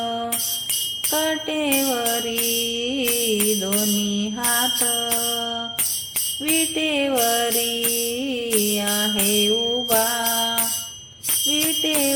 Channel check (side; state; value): both; identical; correlation 1.00